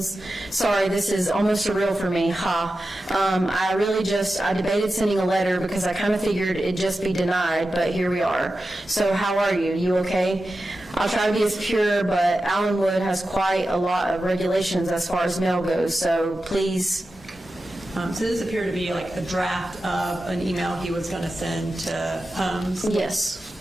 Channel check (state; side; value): normal; both; correlation 0.92